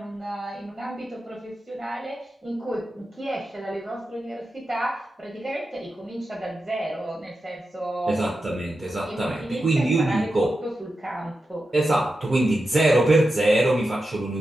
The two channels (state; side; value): normal; both; correlation 0.90